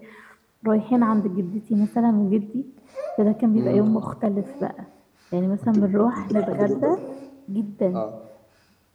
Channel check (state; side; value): identical; both; correlation 1.00